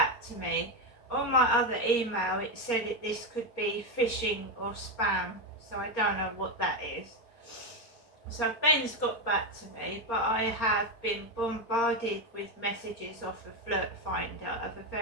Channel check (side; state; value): right; late; 4.4 ms